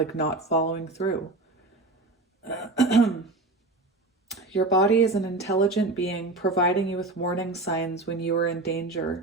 following through. Your body is an intelligent being providing you with warning signs when you are in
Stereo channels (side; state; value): left; quieter; 3.2 dB